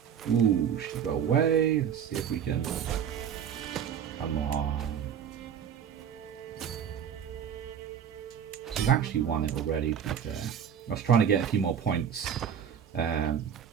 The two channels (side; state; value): left; quieter; 8.4 dB